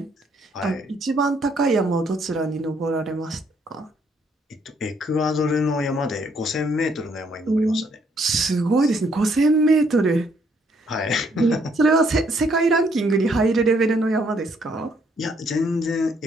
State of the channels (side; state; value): both; normal; correlation 0.69